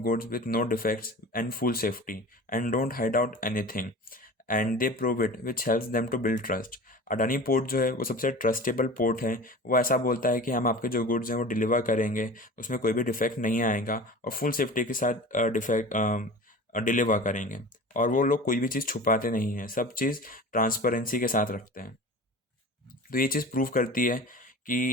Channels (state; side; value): normal; both; correlation 0.36